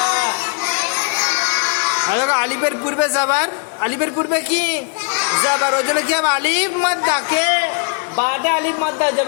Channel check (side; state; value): right; quieter; 38.7 dB